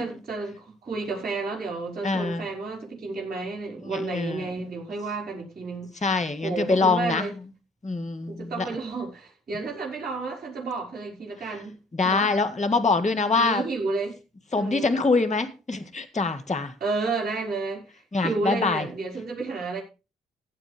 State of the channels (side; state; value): both; normal; correlation 0.57